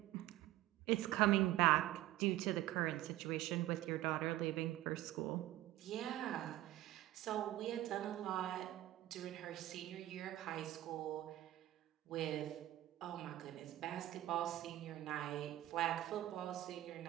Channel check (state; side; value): quieter; left; 15.0 dB